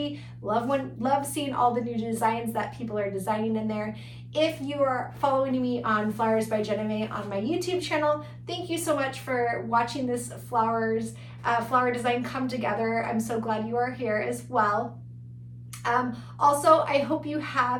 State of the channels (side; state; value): both; identical; correlation 1.00